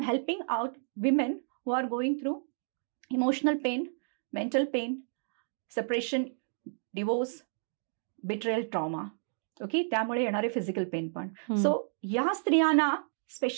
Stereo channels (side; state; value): left; silent; digital silence